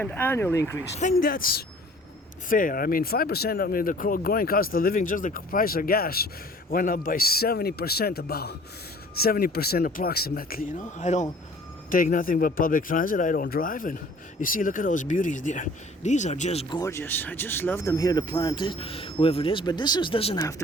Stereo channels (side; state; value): both; normal; correlation 0.51